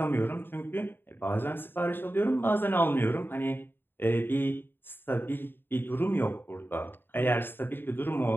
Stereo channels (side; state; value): right; late; 0.099 ms